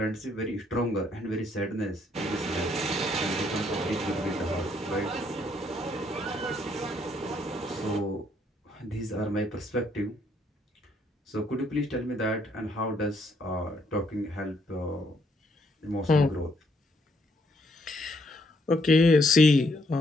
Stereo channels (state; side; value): normal; both; correlation 0.71